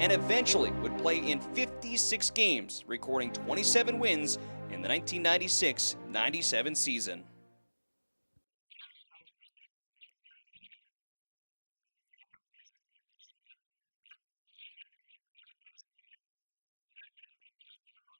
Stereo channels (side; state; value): both; inverted; correlation -1.00